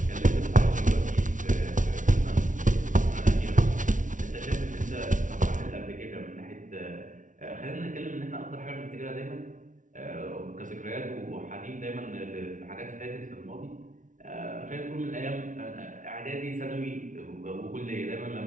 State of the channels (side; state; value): left; late; 0.37 ms